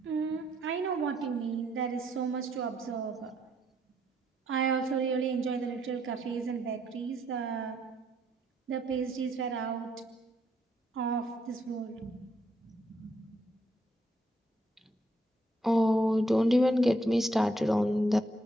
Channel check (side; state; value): both; normal; correlation 0.73